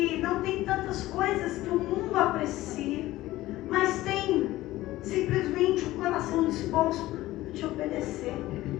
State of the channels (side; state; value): right; quieter; 16.7 dB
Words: não tem tantas coisas que o mundo aprecia, mas tem simplesmente o coração disposto a te obedecer.